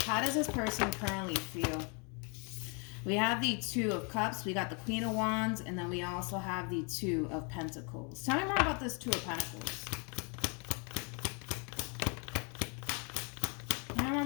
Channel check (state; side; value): quieter; right; 34.4 dB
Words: How does this person currently feel? We have the Two of Cups, we got the Queen of Wands, and then we also have the Two of Pentacles. Tell me more about this Two of Pentacles. Tell me more